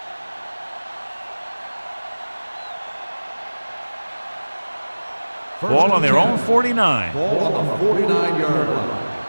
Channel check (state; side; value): inverted; both; correlation -1.00